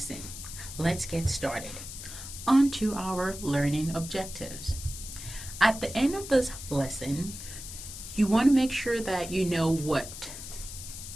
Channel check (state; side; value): noise; left; hiss, 11 dB below the sound